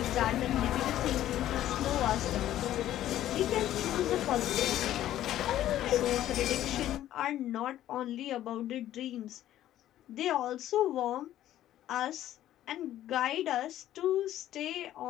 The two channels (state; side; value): quieter; right; 12.8 dB